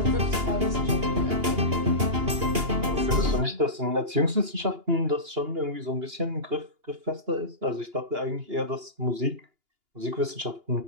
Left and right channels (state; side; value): late; left; 2.8 ms